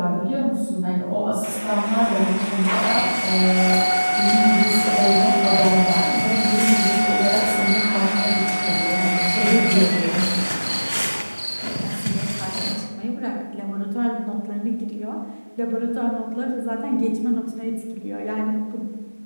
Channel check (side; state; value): both; inverted; correlation -1.00